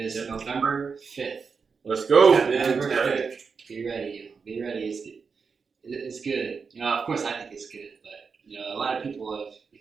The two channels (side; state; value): left; quieter; 5.4 dB